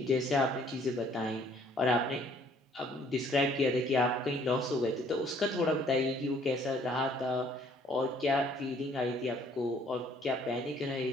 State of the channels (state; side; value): normal; both; correlation 0.61